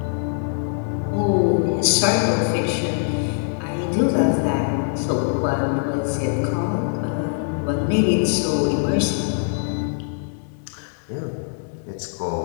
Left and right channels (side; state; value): right; silent; 64 dB below the other